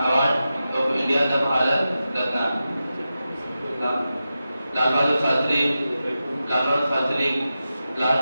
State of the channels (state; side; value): inverted; both; correlation -0.91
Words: of India, the Bharat Ratna. Lal Bahadur Shastri